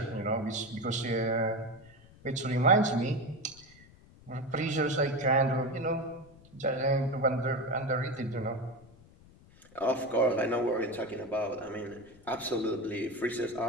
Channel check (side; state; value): left; noise; rumble, 24 dB below the sound